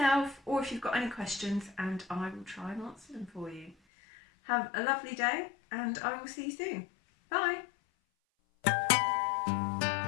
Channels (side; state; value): right; drops out; at 3.8 s